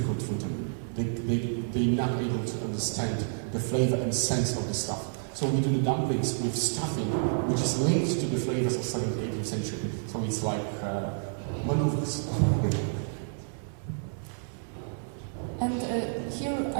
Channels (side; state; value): left; silent; 58 dB below the other